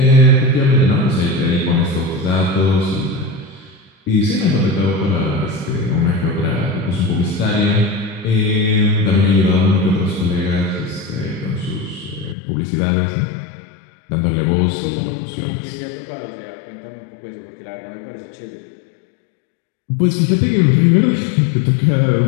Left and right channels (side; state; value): right; drops out; at 12.4 s